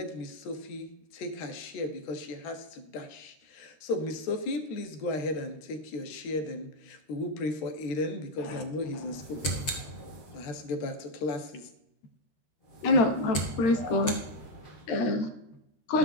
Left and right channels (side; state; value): right; late; 13 ms